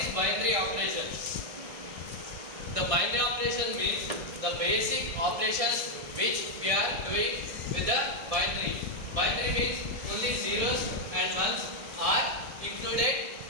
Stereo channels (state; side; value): late; left; 1.6 ms